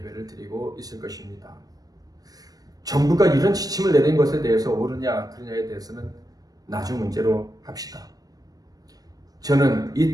드리고 있을 것입니다. 정부가 이런 지침을 내린 것에 대해서 옳으냐 그르냐에 대해서는 나중 문제로 합시다. 저는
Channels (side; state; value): left; late; 0.18 ms